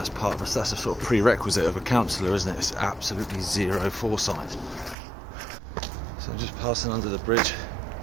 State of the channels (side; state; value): left; drops out; at 5.0 s